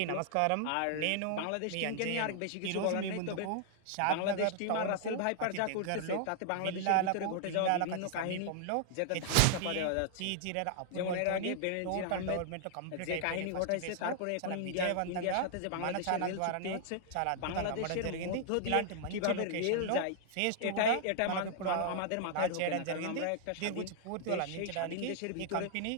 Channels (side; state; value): both; different; correlation -0.01